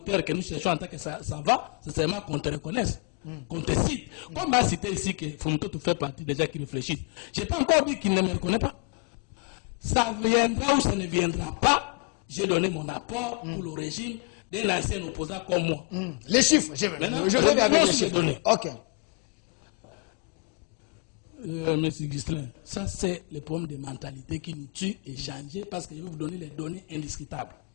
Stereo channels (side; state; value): right; quieter; 35.0 dB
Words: que nous cherchons en tant que ça va, c'est seulement qu'on te reconnaisse. Qu'on te cite. Comme m'a cité ici que Fumuto fait partie des gens qui réfléchissent. Je n'ai pas encore dit qu'il ne me reconnaît pas. Ça viendra ou ça ne viendra pas. J'ai donné mon apport pour le régime d'un ancien opposant comme moi. Les chiffres, je vais avec les chiffres. Données. Monsieur Ghislain, ça c'est le problème de mentalité qui nous tue et changer parce que je vais vous donner les données indiscutables.